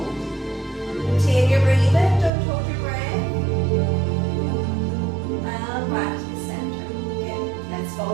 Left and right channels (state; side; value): drops out; left; at 2.3 s